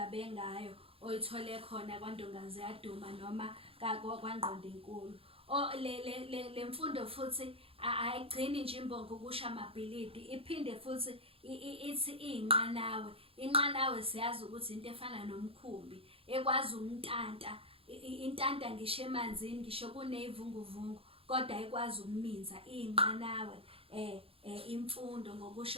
ngayo oyithole khona kwaNdongazi yaDuma noma kwaNgqondonkulu. Le mfundo futhi ayigcini nje imbongi ukusho amabhilidi, iphinde futhi ithi iy'nqanawe. Inqanawe siyazi ukuthi into efana nomkhumbi ekwazi umntanta. Intanta ngisho emanzini, ngisho kuney'vunguvungu kodwa ikwazi ukuminza iy'nqanawe. Imfundo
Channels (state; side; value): late; left; 0.27 ms